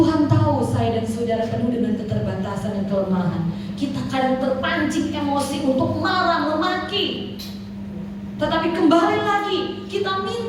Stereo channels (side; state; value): both; identical; correlation 1.00